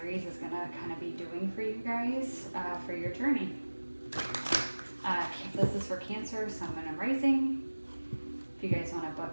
is going to kind of be doing for you guys for your journey. This is for Cancer, Sun, Moon, and Rising. If you guys want to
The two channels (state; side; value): inverted; both; correlation -1.00